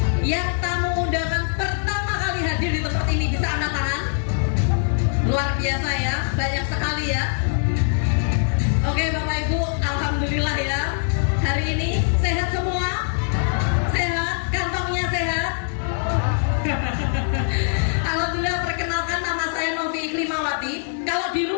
Yang tamu undangan pertama kali hadir di tempat ini bisa angkat tangan. Luar biasa ya, banyak sekali ya. Oke Bapak Ibu, alhamdulillah ya. Hari ini sehat semua? Sehat? Kantongnya sehat? Alhamdulillah, perkenalkan nama saya Novi Iklimawati. Kalau di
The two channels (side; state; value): right; silent; digital silence